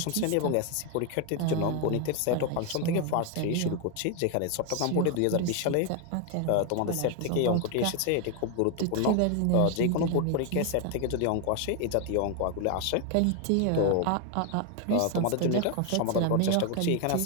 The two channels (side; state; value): both; different; correlation 0.01